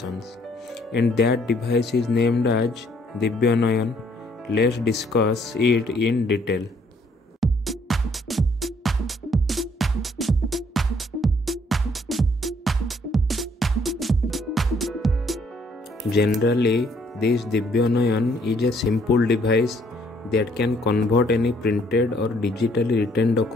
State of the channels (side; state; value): both; normal; correlation 0.65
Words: and that device is named as Divyanayan. Let's discuss it in detail. Generally, this Divyanayan is a simple device that can convert any printed or digitally written